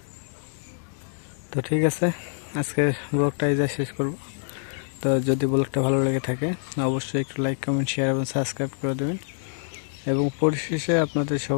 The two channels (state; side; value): silent; right; digital silence